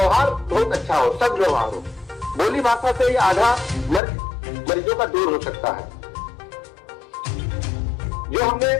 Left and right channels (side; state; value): right; drops out; at 4.0 s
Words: बहुत अच्छा हो, सद्व्यवहार हो। बोली भाषा से ही आधा मरीजों का दूर हो सकता है। जो हमने